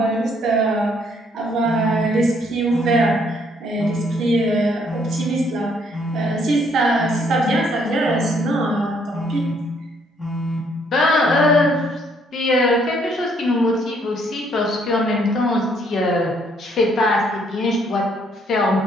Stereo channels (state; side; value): normal; both; correlation 0.67